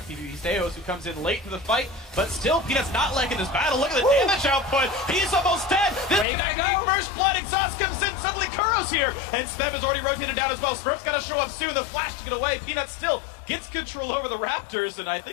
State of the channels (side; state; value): right; drops out; at 6.2 s